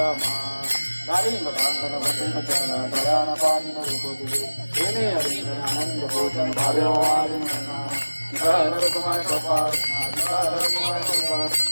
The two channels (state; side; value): inverted; both; correlation -1.00